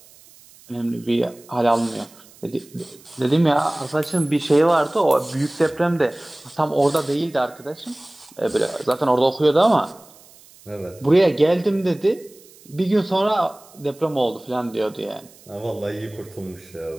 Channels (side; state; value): right; noise; hiss, 25 dB below the sound